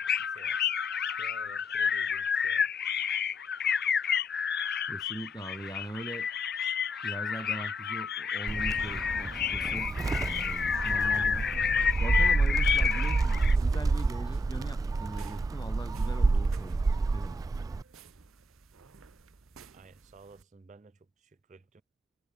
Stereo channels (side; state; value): both; normal; correlation 0.78